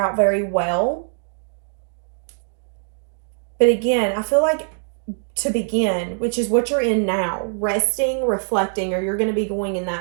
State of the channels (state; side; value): silent; left; digital silence